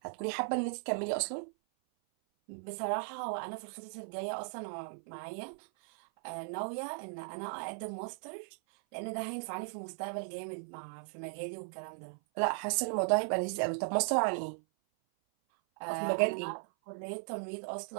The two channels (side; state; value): left; silent; 53 dB below the other